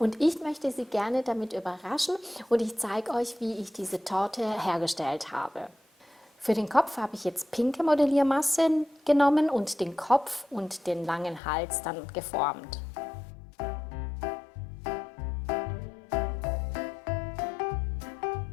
ich möchte sie gerne damit überraschen und ich zeige euch, wie ich diese Torte hergestellt habe. Für den Kopf habe ich jetzt pinke Modelliermasse genommen und den Kopf und den langen Hals dann geformt.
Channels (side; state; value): right; drops out; at 11.4 s